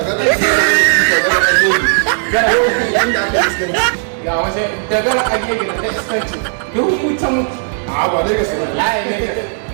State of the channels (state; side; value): silent; left; digital silence